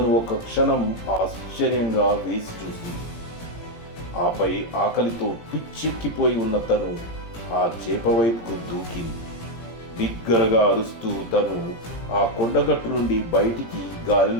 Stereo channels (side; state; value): right; late; 17 ms